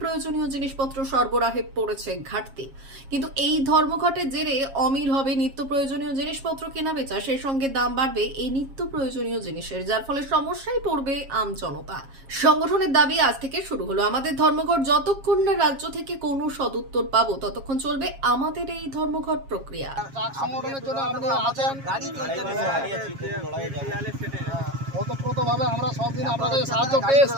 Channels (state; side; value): late; left; 7.3 ms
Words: প্রয়োজনীয় জিনিসপত্র সরবরাহে পড়েছে ঘাটতি। কিন্তু এই ধর্মঘটের জেরে অমিল হবে নিত্য প্রয়োজনীয় জিনিসপত্র কেনা বেচা, সেই সঙ্গে দাম বাড়বে এই নিত্য প্রয়োজনীয় জিনিসের, যার ফলে সমস্যায় পড়বে জনতা। সংগঠনের দাবি, আজ থেকে শুরু হলো আমাদের ধর্মঘট। যতক্ষণ না রাজ্য থেকে কোনো সদুত্তর পাবো ততক্ষণ চলবে আমাদের এই ধর্মঘট প্রক্রিয়া। ওতপ্রোতভাবে আমরা সব দিন আপনাদের সাহায্য পেয়েছি,